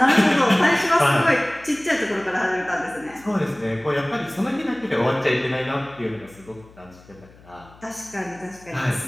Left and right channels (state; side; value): noise; left; hum, 24 dB below the sound